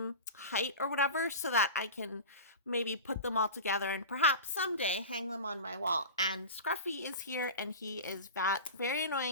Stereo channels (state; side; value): inverted; both; correlation -0.30